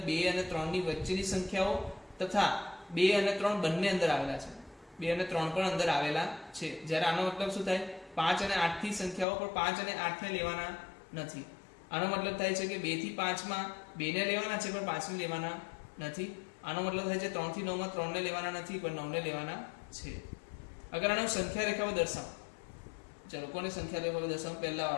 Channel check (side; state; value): right; drops out; at 9.2 s